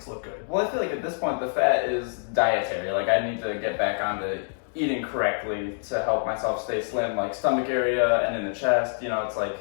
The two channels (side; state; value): right; silent; 61 dB below the other